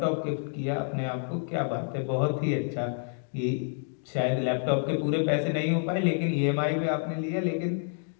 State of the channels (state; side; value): silent; right; digital silence